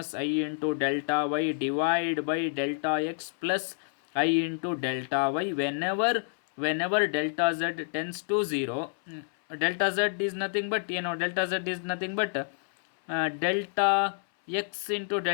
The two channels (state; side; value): silent; right; 59 dB below the other